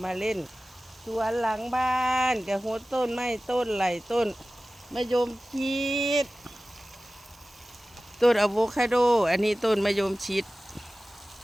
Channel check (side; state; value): both; normal; correlation 0.96